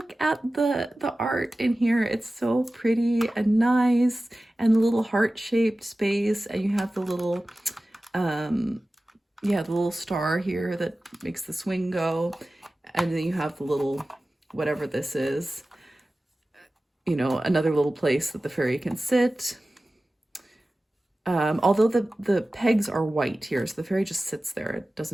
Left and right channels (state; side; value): normal; both; correlation 0.96